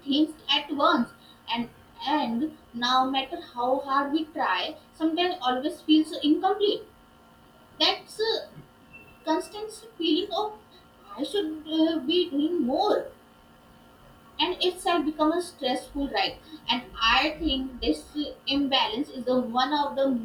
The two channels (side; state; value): both; identical; correlation 1.00